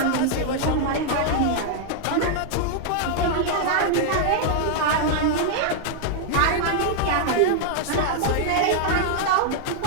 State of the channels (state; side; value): different; both; correlation -0.01